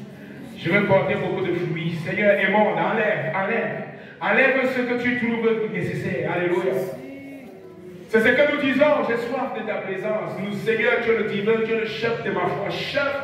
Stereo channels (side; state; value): both; identical; correlation 1.00